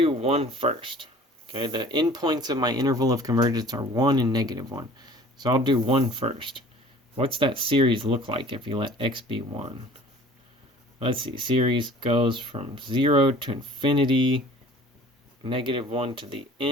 1 first. Okay, the endpoints of my interval of convergence are 1 and negative 1. So I'll do 1 first. What's that series look like if you let x be 1? let's see, series goes from 0 to infinity, -1 to the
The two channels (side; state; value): both; normal; correlation 0.48